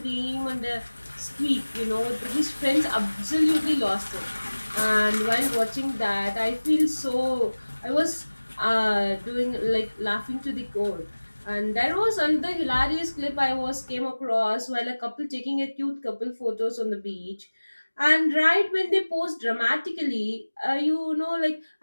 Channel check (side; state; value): both; inverted; correlation -1.00